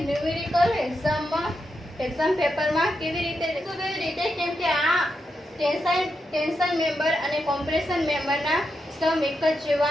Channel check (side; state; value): both; normal; correlation 0.85